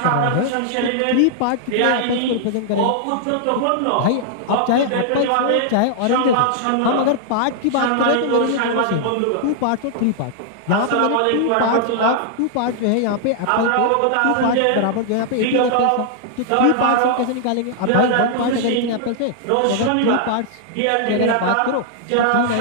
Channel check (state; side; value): different; both; correlation -0.01